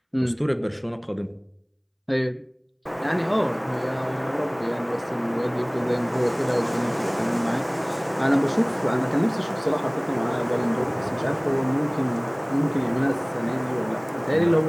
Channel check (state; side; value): identical; both; correlation 1.00